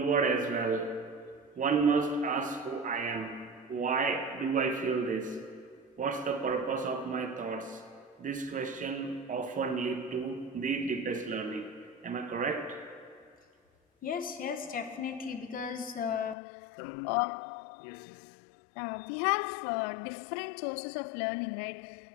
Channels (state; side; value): drops out; right; at 16.4 s